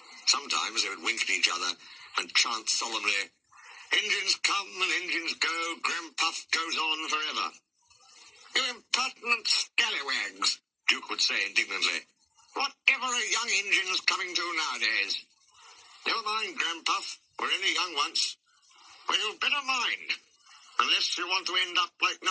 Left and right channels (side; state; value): both; normal; correlation 0.95